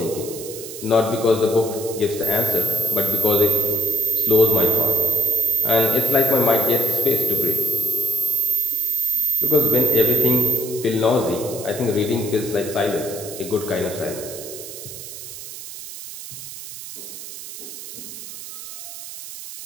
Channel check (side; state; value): right; noise; hiss, 12 dB below the sound